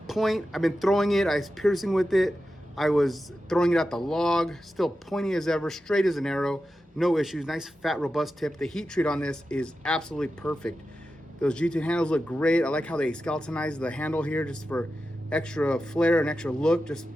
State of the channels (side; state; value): both; normal; correlation 0.91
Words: point, I've been throwing it, I was piercing with it, I was throwing it at the log, still pointy as ever, straight as an arrow, no issues. Nice, fat, robust tip. The heat treat on this is absolutely perfect. Those G2 handles look great. I like how they skeletonized the handle here just for extra flair and extra look. Just